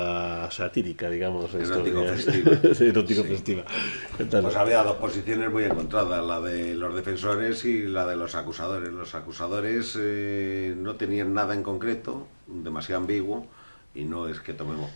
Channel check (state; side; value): inverted; both; correlation -1.00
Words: satírica, digamos, erótico-festiva. Pues había dos posiciones muy encontradas, la de los defensores y la de los acusadores. Los acusadores no tenían nada en concreto, demasiado ambiguo, y no es que tomemos